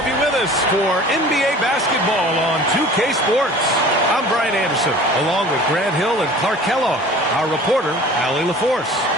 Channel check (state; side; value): normal; both; correlation 0.44